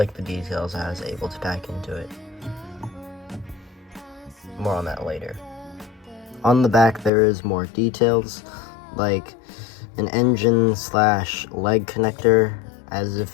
the details I was able to pack into it. More on that later. On the back there is more details, like an engine slash leg connector, as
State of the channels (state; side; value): drops out; right; at 7.1 s